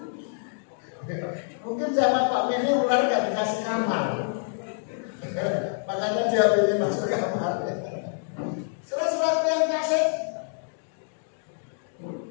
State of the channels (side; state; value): right; silent; digital silence